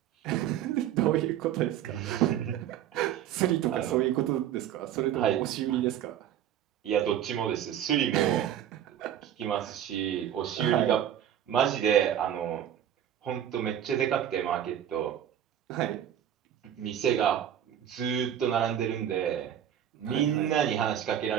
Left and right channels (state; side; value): quieter; left; 10.4 dB